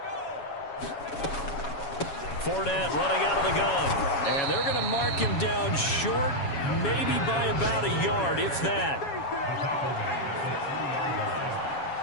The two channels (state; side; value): late; right; 7.2 ms